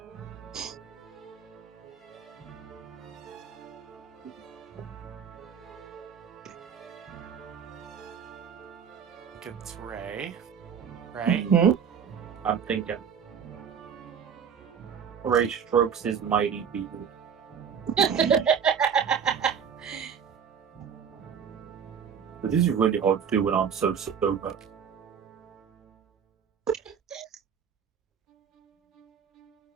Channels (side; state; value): left; quieter; 7.3 dB